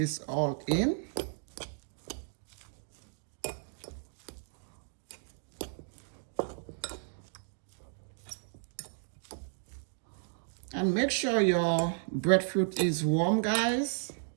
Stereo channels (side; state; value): left; silent; digital silence